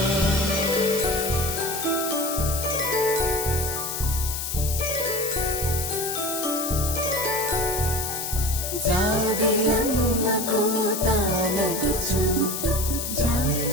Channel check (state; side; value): noise; left; hiss, 4 dB below the sound